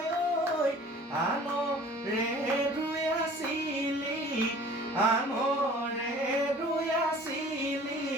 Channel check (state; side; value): normal; both; correlation 0.47